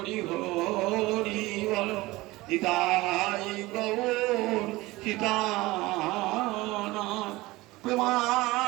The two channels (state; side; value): quieter; left; 20.0 dB